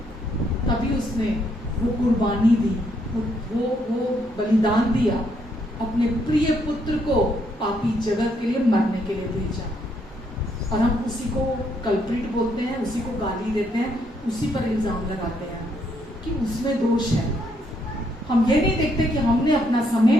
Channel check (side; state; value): both; normal; correlation 0.73